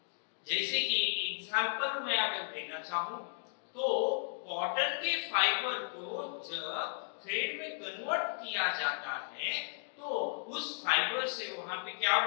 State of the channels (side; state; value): right; silent; digital silence